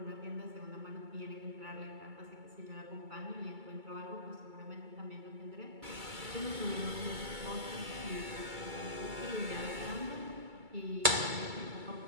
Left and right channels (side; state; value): left; late; 2.3 ms